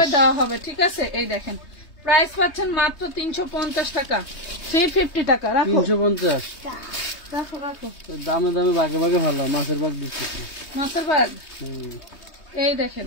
দেওয়া হবে, ঠিক আছে। এই দেখেন প্রাইস পাচ্ছেন মাত্র 350 টাকা, 350 টাকা, রাখো 350, রাখো রাখো, দামে দামে ভাগে ভাগে ভালো, মাছের ভাগ দিচ্ছি, মাছের ভাগ। এই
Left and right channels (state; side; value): late; right; 3.2 ms